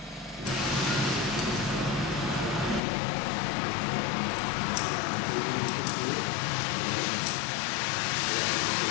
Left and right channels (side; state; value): right; drops out; at 2.8 s